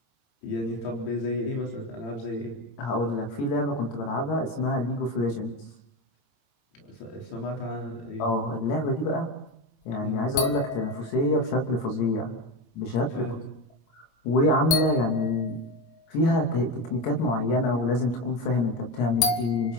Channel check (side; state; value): right; late; 18 ms